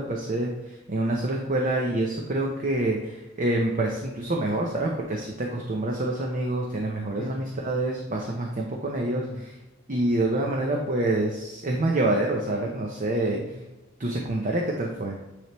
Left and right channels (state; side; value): normal; both; correlation 0.44